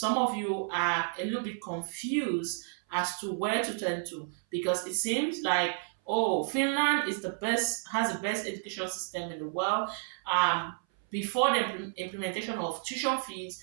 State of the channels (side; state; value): left; silent; 57 dB below the other